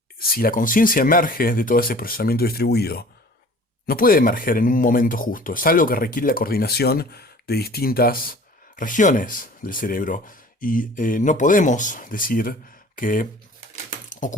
si la conciencia emerge de todo ese procesamiento distribuido, no puede emerger en un momento justo, es algo que requiere la coordinación de distintas regiones del cerebro. Y no podemos decir que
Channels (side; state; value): both; normal; correlation 0.47